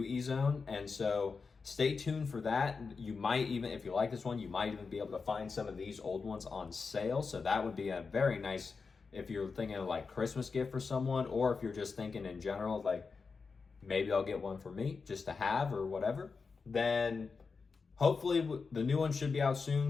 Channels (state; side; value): quieter; right; 4.8 dB